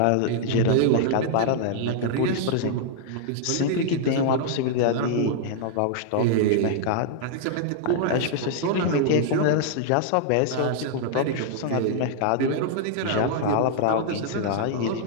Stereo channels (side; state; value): both; different; correlation -0.01